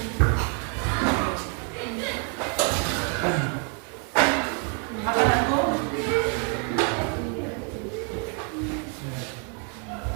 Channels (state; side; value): quieter; left; 38.2 dB